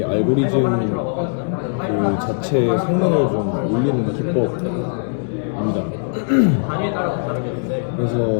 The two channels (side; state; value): right; silent; digital silence